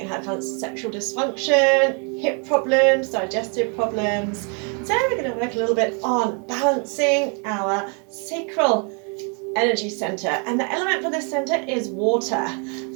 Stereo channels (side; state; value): left; quieter; 37.5 dB